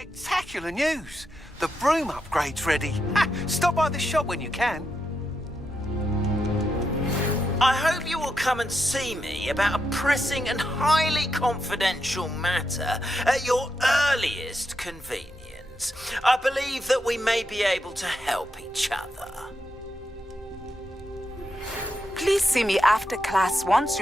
news! The broom upgrade's ready. Ha! Stop by the shop when you can. I hope you will come and see me about a pressing and highly confidential matter at your earliest convenience. I believe that we may be able to help each other. Please see me after class once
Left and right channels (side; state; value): both; normal; correlation 0.85